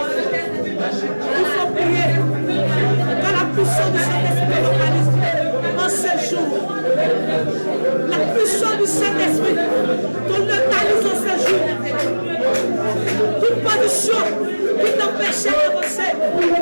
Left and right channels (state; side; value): inverted; both; correlation -1.00